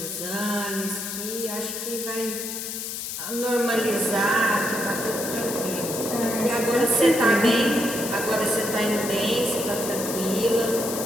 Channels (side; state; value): left; noise; hiss, 6 dB below the sound